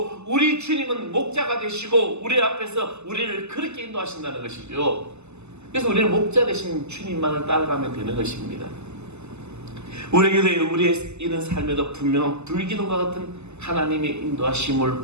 우리 주님은 목자가 되시고 우리 앞에서 우리를 그렇게 인도하신다는 것이죠. 그래서 우리는 목자 되신 주님만을 따라가면 되는 것입니다. 우리에게도 우리의 이런 삶에도 분명한 불기둥과 같은 하나님의 인도하심을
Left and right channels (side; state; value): left; late; 0.82 ms